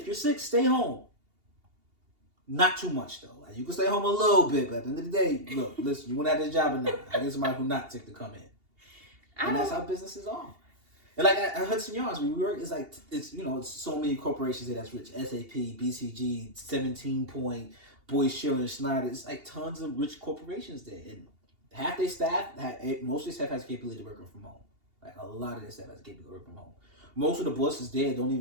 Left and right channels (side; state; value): left; late; 2.8 ms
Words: you're sick, stay home. Not too much though. Like, you can stay home a little bit, but at the end of the day, look, listen, you want to have this job or not? I get somebody who not sick to come in, and that's how businesses are. And like at Hudson Yards, where we work, it's like it's so many corporations there that's rich. SAP, BCG, 17 Point. Boyd, Schiller, and Schneider, it's like tons of rich corporations there. And half their staff, most of their staff has the capability of working from home. Like a lot of their staff has the capability of working from home. Most of the bosses there